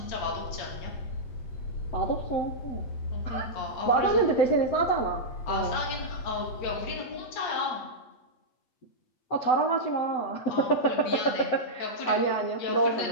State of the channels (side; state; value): right; late; 8.5 ms